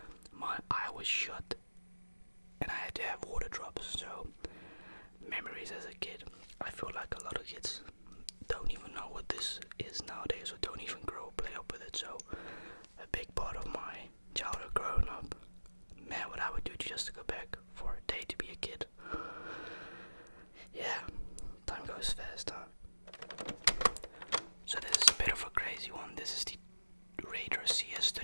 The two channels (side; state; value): both; inverted; correlation -1.00